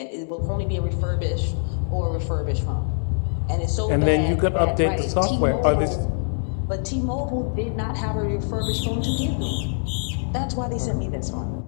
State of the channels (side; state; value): right; silent; digital silence